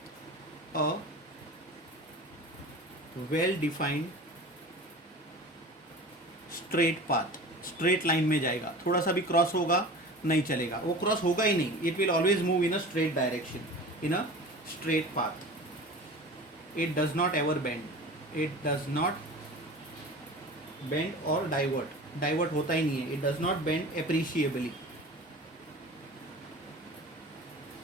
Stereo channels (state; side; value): normal; both; correlation 0.37